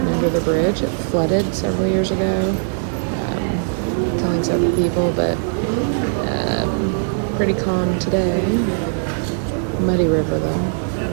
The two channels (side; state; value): left; silent; digital silence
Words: under the bridge. It flooded several years ago, killing several people, but pretty calm today. Muddy river